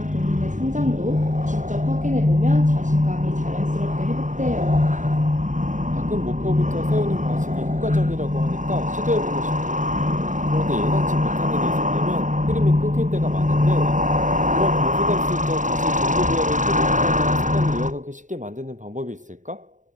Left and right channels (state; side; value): late; left; 0.36 ms